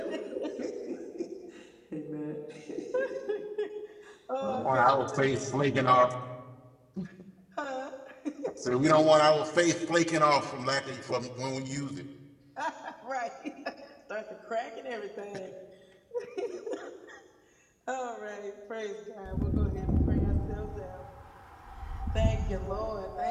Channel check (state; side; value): identical; both; correlation 1.00